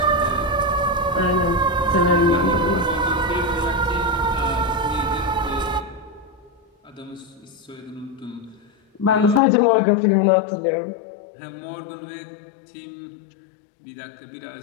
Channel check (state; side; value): drops out; right; at 9.4 s